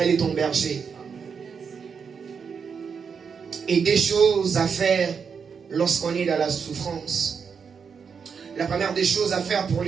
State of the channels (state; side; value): quieter; left; 6.2 dB